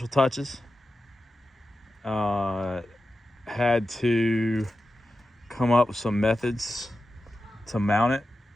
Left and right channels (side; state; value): both; normal; correlation 0.92